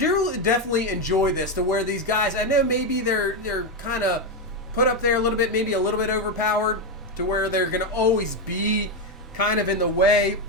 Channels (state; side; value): normal; both; correlation 0.07